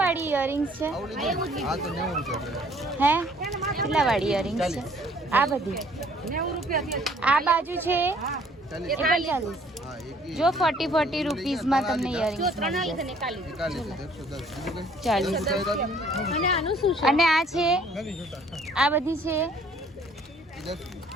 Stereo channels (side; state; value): both; normal; correlation 0.59